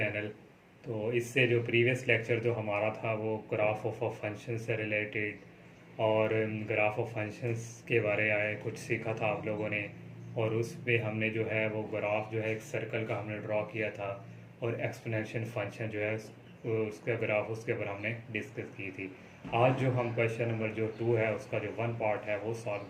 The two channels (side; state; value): both; identical; correlation 1.00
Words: तो इससे जो प्रीवियस लेक्चर जो हमारा था वो ग्राफ ऑफ फंक्शन से रिलेटेड और ग्राफ ऑफ फंक्शंस के बारे में कुछ सीखा था आप लोगों ने। और उस पे हमने जो है वो ग्राफ जो है एक सर्कल का हमने ड्रॉ किया था और एक्सपोनेंशियल फंक्शन जो है उसका ग्राफ उसके ऊपर हमने डिस्कस की थी। आज जो हम क्वेश्चन नंबर जो 2 है उसका जो 1 पार्ट है वो सॉल्व